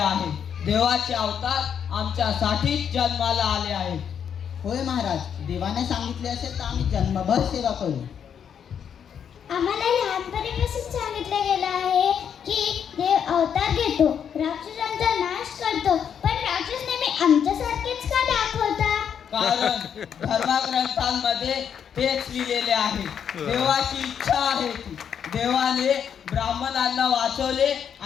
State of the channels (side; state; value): right; quieter; 8.0 dB